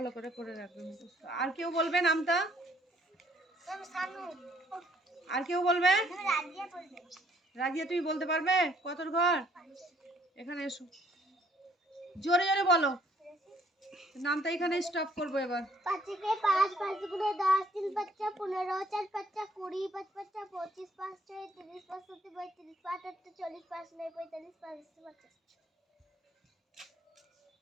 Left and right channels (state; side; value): normal; both; correlation 0.64